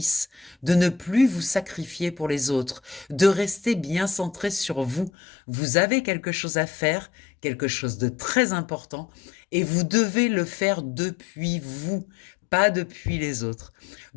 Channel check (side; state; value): right; drops out; at 5.1 s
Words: de ne plus vous sacrifier pour les autres, de rester bien centré sur vous. Vous avez quelque chose à faire, quelque chose de très important, et vous devez le faire depuis vous, pas depuis les autres,